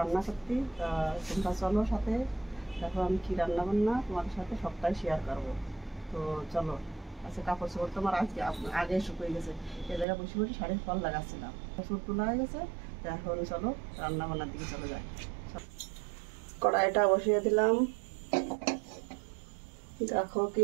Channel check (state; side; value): drops out; left; at 10.1 s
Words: করতে। তা তোমরা চলো সাথে, দেখো আমি কী রান্না বান্না তোমাদের সাথে সবটাই শেয়ার করবো। তো চলো। আচ্ছা, কাপড় চোপড় তোমার আজকে আগে শুকিয়ে গেছে, এ জায়গায় বসে বসে শাড়ির ফল লাগাচ্ছিলাম, কাপড় তোলা হয়ে গেছে। তো এখন চলো রান্না বান্নার দিকে চলে যাই। কড়াইটা বসিয়ে দিলাম, দেখো কি